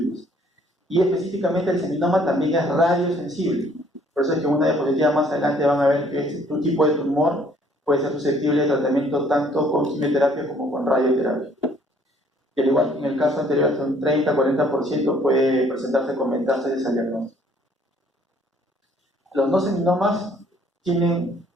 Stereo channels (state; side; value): normal; both; correlation 0.61